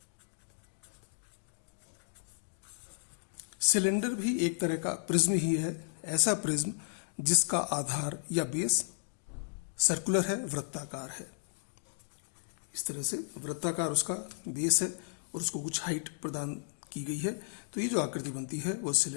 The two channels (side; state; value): right; silent; digital silence